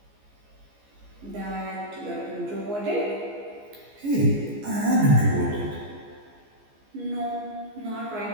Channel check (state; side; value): late; left; 14 ms